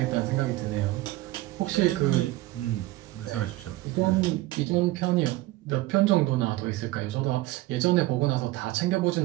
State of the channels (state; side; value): quieter; left; 17.8 dB